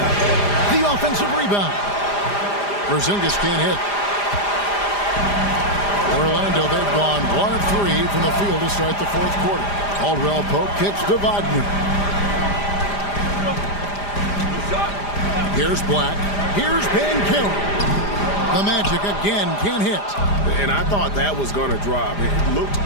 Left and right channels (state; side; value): late; right; 4.9 ms